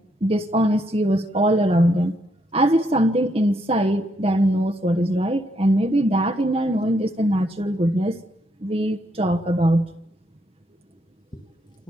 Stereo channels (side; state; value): both; normal; correlation 0.75